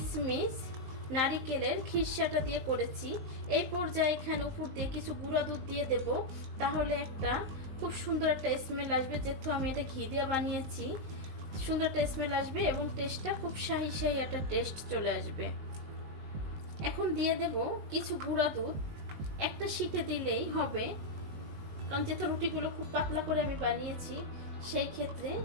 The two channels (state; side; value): late; left; 19 ms